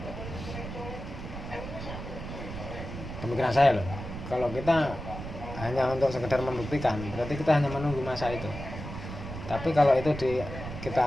Pemikiran saya loh, kalau kita hanya untuk sekedar membuktikan berarti kita hanya menunggu masa itu. Tapi kalau itu kita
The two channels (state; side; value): noise; right; rumble, 9 dB below the sound